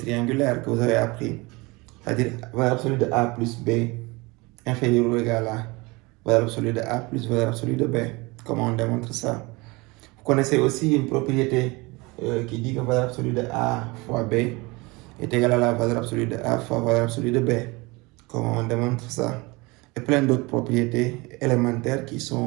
que vous avez appris, c'est-à-dire valeur absolue de A plus B inférieur ou égal à valeur absolue de A plus valeur absolue de B. Comment on démontre ça? Vous connaissez aussi une propriété qui dit que valeur absolue de A fois B est égale à la valeur absolue de A fois valeur absolue de B. Comment on démontre ça? Et plein d'autres propriétés élémentaires qui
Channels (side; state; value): left; quieter; 24.7 dB